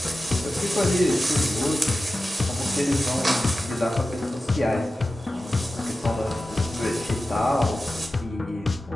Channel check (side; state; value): both; normal; correlation 0.94